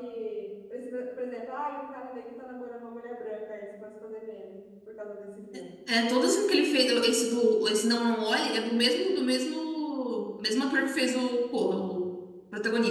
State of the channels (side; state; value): both; identical; correlation 1.00